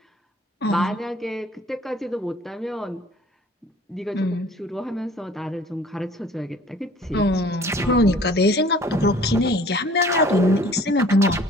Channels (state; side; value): normal; both; correlation 0.51